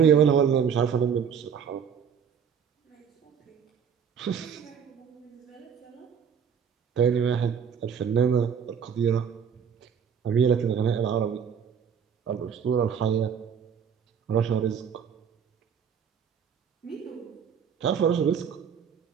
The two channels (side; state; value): left; quieter; 7.4 dB